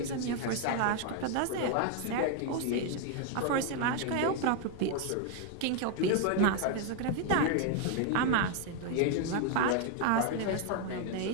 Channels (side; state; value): both; different; correlation 0.01